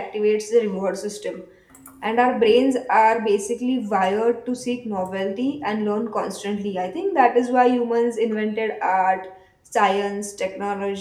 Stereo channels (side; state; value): both; identical; correlation 1.00